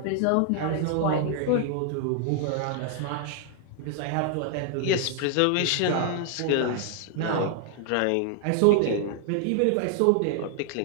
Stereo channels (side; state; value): both; different; correlation 0.00